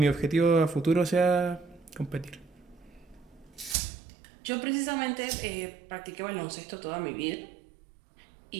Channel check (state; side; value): drops out; left; at 3.8 s